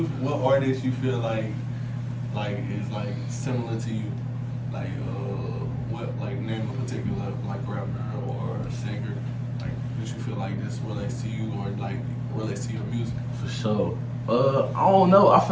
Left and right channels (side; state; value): both; identical; correlation 1.00